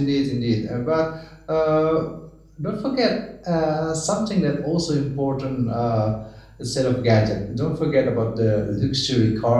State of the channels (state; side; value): identical; both; correlation 1.00